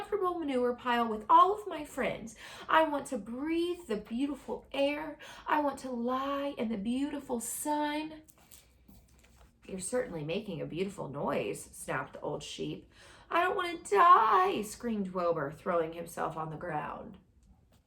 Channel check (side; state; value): both; identical; correlation 1.00